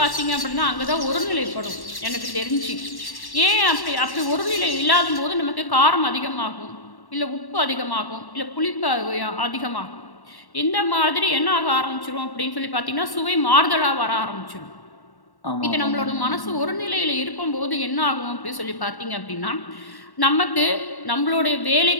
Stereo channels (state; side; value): late; right; 1.1 ms